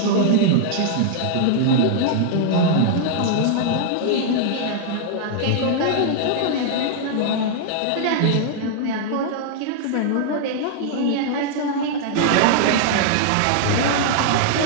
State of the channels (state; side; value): different; both; correlation -0.01